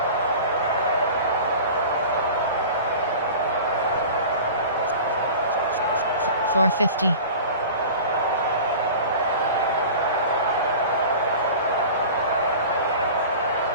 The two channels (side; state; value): both; inverted; correlation -0.38